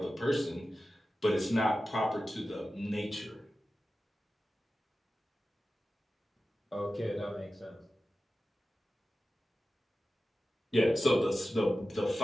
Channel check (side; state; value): both; normal; correlation 0.94